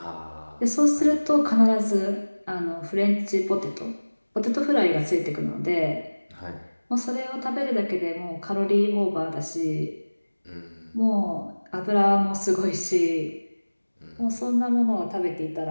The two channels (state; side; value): inverted; both; correlation -1.00